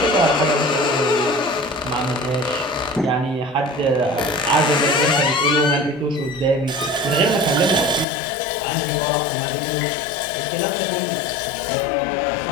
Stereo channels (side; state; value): right; drops out; at 8.1 s